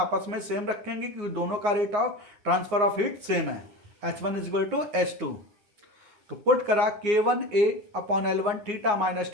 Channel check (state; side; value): late; left; 9.6 ms